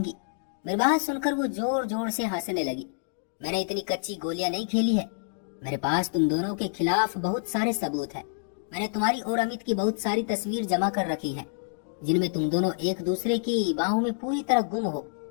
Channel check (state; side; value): silent; right; digital silence